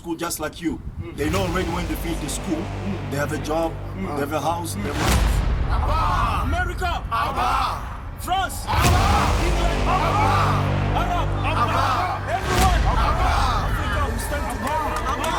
just like you, they know already when they finish the school, they have a job, they have a house, they have a... Abba! America! Abba! France! Abba! England! Abba! Arab! Abba! Everyone! Abba! Africa, we stand together!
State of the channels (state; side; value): identical; both; correlation 1.00